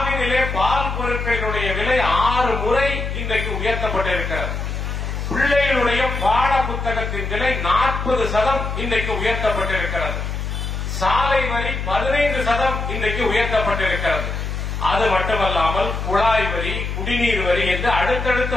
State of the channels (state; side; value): noise; left; hum, 4 dB below the sound